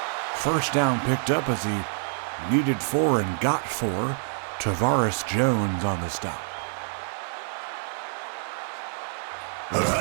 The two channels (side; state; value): left; silent; 55 dB below the other